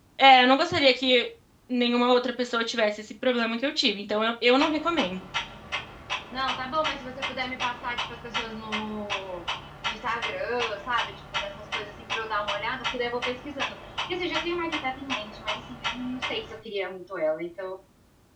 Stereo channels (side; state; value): both; identical; correlation 1.00